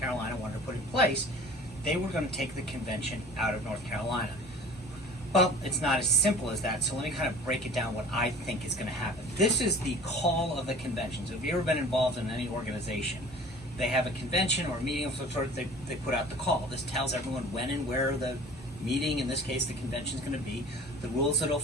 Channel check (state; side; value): normal; both; correlation 0.44